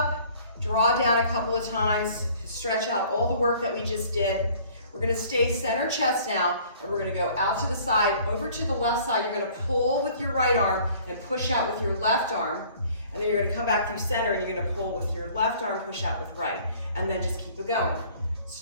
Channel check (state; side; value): inverted; both; correlation -0.54